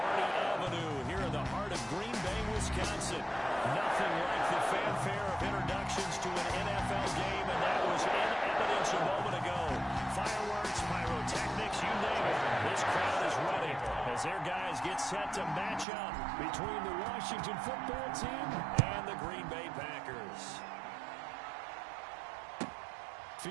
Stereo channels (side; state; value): left; drops out; at 15.9 s